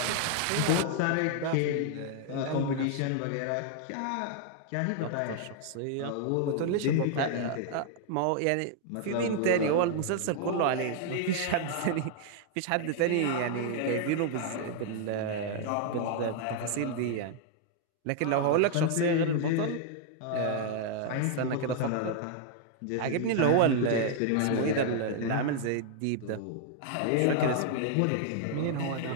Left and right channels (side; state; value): both; different; correlation 0.00